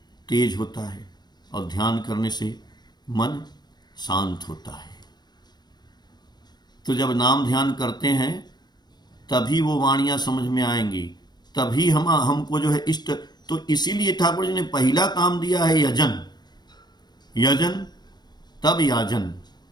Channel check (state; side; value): late; right; 0.20 ms